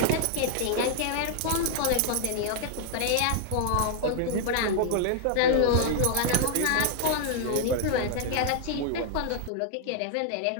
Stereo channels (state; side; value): different; both; correlation 0.00